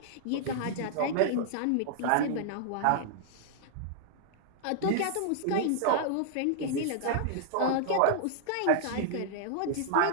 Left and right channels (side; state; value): both; different; correlation -0.01